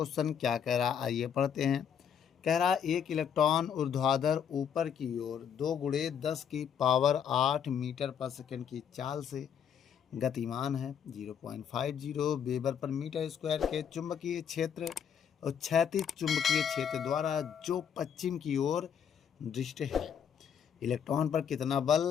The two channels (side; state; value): right; quieter; 8.0 dB